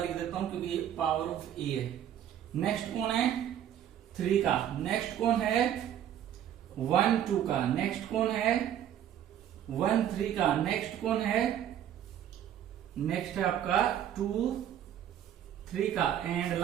देता हूं क्योंकि ये पावर ऑफ ए है। नेक्स्ट कौन है, 3 का, नेक्स्ट कौन है 1 2 का, नेक्स्ट कौन है 1 3 का, नेक्स्ट कौन है, नेक्स्ट है आपका 2 3 का, एंड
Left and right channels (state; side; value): quieter; left; 10.4 dB